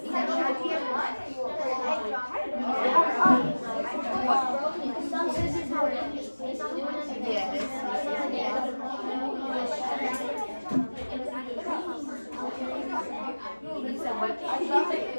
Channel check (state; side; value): inverted; both; correlation -1.00